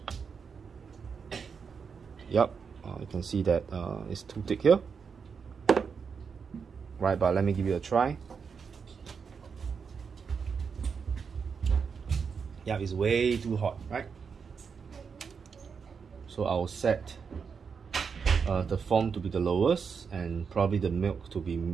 Yep, you can see that it's too thick here. Right, but let me give it a try. Yeah, it's way too hot, right? So I'll set the foam to be the lowest and probably the milk to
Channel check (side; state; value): left; quieter; 6.0 dB